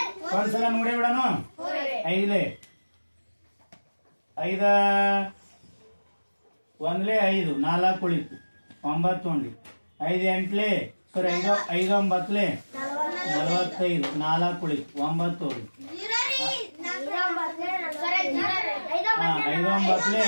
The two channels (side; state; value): both; inverted; correlation -1.00